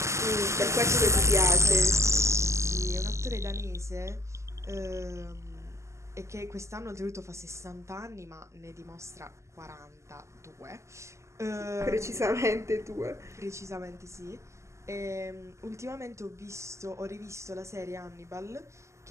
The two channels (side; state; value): left; late; 0.14 ms